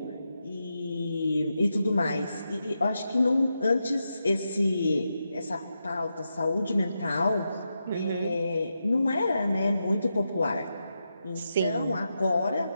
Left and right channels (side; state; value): both; inverted; correlation -0.87